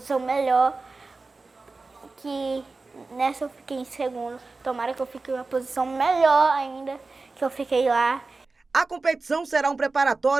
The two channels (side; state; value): left; quieter; 3.8 dB